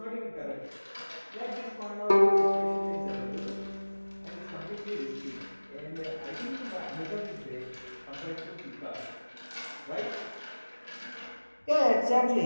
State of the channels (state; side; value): inverted; both; correlation -1.00